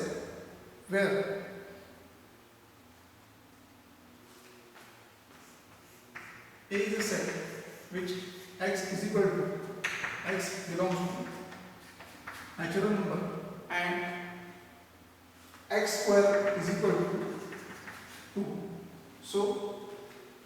where A is a set which x is equal to, x belongs to natural number and x square is equal to 2. So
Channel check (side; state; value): both; identical; correlation 1.00